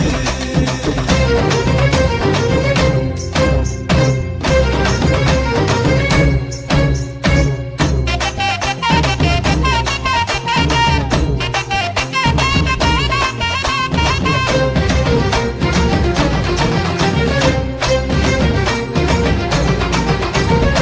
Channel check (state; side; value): identical; both; correlation 1.00